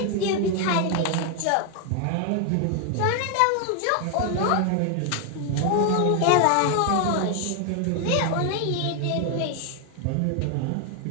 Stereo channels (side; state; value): both; different; correlation 0.00